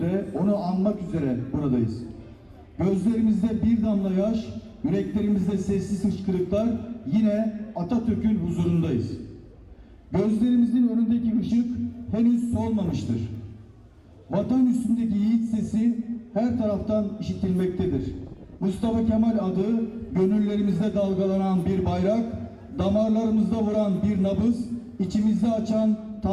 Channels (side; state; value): both; identical; correlation 1.00